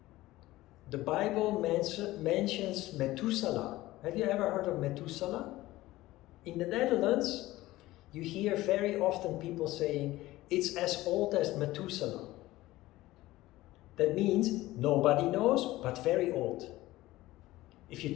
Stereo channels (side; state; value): right; quieter; 17.4 dB